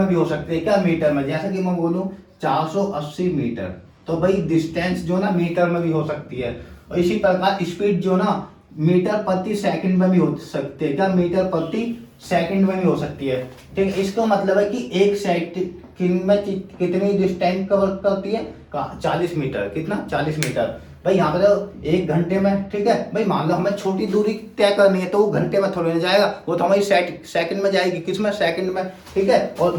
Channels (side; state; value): both; identical; correlation 1.00